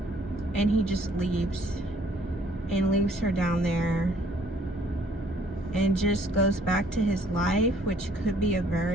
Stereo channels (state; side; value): normal; both; correlation 0.61